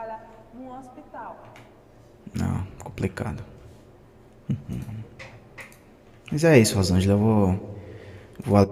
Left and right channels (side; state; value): both; identical; correlation 1.00